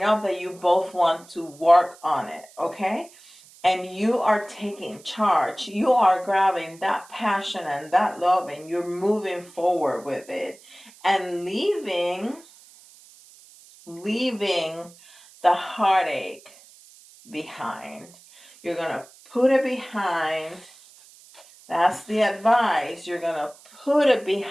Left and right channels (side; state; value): right; noise; hiss, 24 dB below the sound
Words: enough that you both want to work on it, okay? And you are taking charge. You are grabbing that passion and that love and you're moving forward with it and leaving the heartache behind. You're going to put it behind. That's the advice. You're going to put it